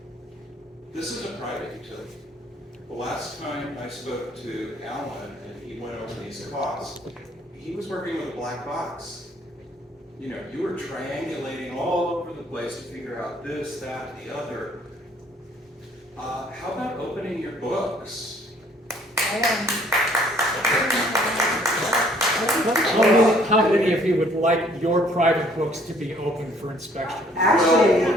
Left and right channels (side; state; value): both; normal; correlation 0.60